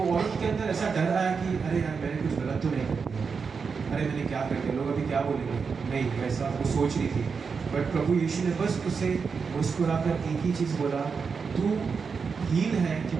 के अंदर ऐसा डर आया कि अरे यार मैंने कुछ गलत तो नहीं कर दिया, अरे मैंने क्या कर दिया, लोग अभी क्या बोलेंगे, नहीं वैसा वो सोच रही थी। बट प्रभु यीशु ने बस उसे मुस्कुराकर एक ही चीज़ बोला, तू हील है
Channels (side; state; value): left; quieter; 5.5 dB